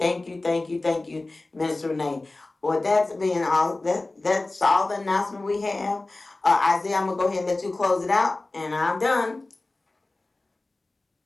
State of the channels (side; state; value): right; quieter; 3.0 dB